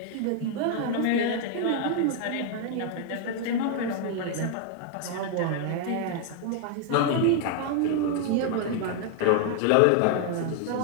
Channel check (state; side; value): different; both; correlation 0.00